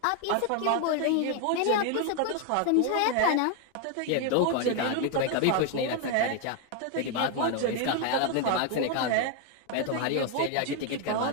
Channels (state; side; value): different; both; correlation 0.01